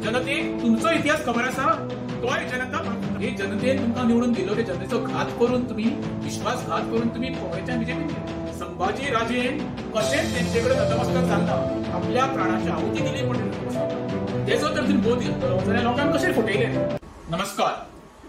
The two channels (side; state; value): both; identical; correlation 1.00